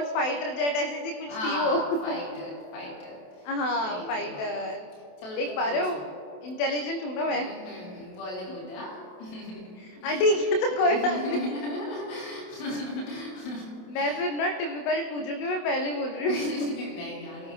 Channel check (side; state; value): right; late; 27 ms